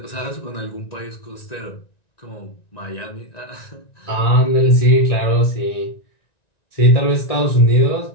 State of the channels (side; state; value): right; late; 1.9 ms